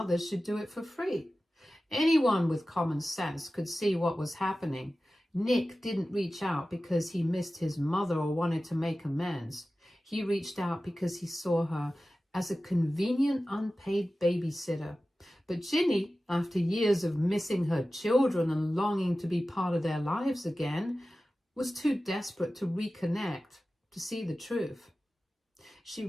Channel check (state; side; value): normal; both; correlation 0.95